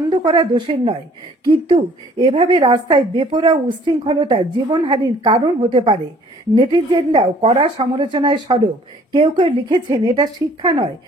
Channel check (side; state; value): both; normal; correlation 0.56